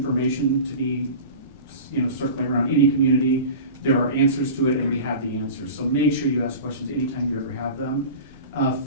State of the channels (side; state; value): both; inverted; correlation -0.34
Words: to be, circling around any community. There are answers to it, and we have the answers. So make sure you ask questions anytime you ever have them.